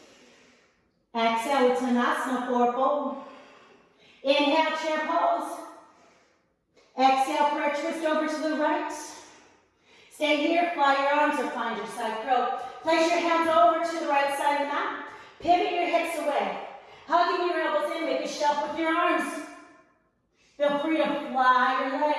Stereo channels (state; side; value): identical; both; correlation 1.00